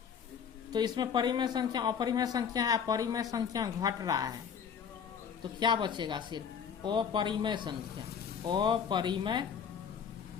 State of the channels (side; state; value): right; quieter; 7.3 dB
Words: तो इसमें परिमेय संख्या अपरिमेय संख्या है, परिमेय संख्या घट रहा है, तो क्या बचेगा, सिर्फ अपरिमेय संख्या, अपरिमेय